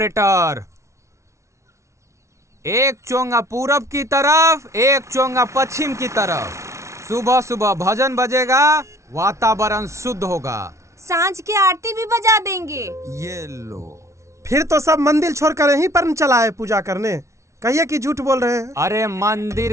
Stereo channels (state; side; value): late; left; 0.14 ms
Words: एक चोंगा पूरब की तरफ, एक चोंगा पश्चिम की तरफ। सुबह सुबह भजन बजेगा, वातावरण शुद्ध होगा। सांझ की आरती भी बजा देंगे। ये लो। फिर तो सब मंदिर छोड़कर यहीं पर चला है पूजा करने। कहिए कि झूठ बोल रहे हैं। अरे